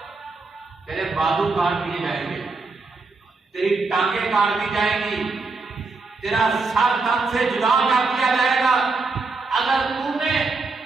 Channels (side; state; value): left; quieter; 3.9 dB